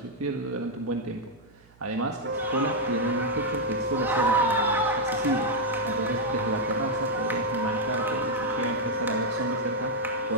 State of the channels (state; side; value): noise; right; hum, 29 dB below the sound